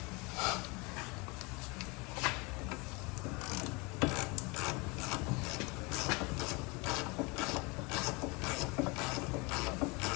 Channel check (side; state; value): right; quieter; 27.8 dB